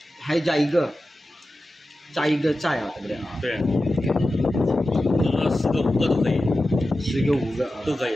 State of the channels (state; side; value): normal; both; correlation 0.93